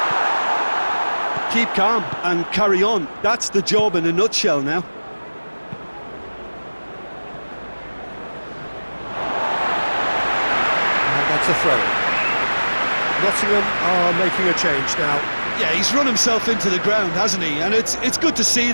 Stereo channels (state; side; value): inverted; both; correlation -1.00